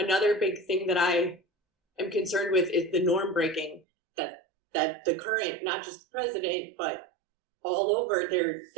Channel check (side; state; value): left; drops out; at 3.8 s